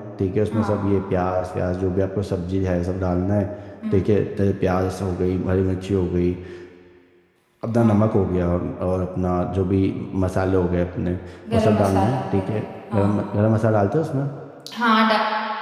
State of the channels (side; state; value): both; identical; correlation 1.00